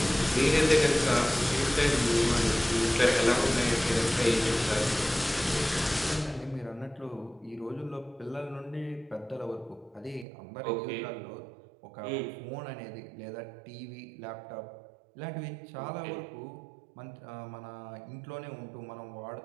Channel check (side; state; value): left; drops out; at 10.2 s